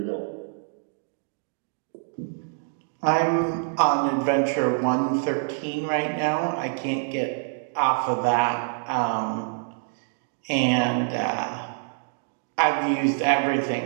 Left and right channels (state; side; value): silent; left; digital silence